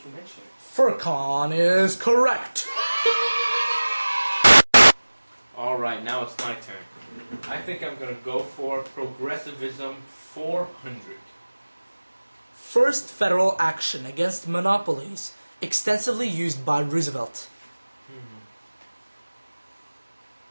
mention it. Furqan is correct. Alright, now it's my turn. I think I'm gonna go for progressivism 400. First federal action against monopolies, extensively used by Roosevelt.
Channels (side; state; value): both; inverted; correlation -1.00